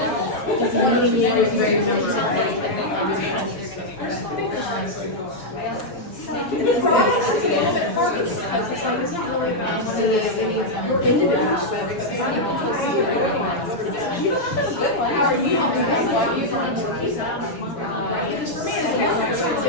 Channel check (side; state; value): right; late; 6.9 ms